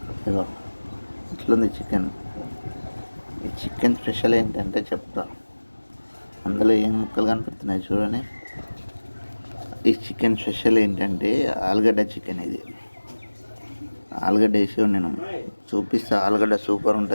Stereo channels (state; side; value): inverted; both; correlation -1.00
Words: ఇగో ఇట్లుంది చికెన్. ఈ చికెన్ స్పెషల్ ఏంటంటే చెప్తా. అందులో ఏం ముక్కలు కనిపిస్తున్నాయి చూడండి. ఈ చికెన్ స్పెషల్ ఏంటంటే ఆలుగడ్డ చికెన్. ఇది ఆలుగడ్డ వేసి నేను చూపిస్తా. ఆలుగడ్డ సూపర్